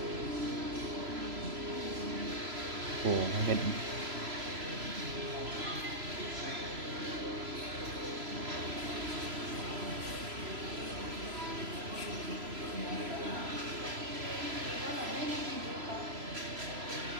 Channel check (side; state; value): left; late; 3.0 ms